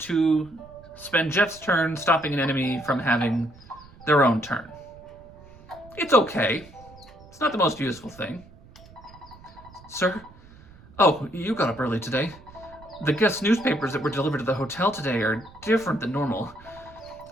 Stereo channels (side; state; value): right; noise; rumble, 22 dB below the sound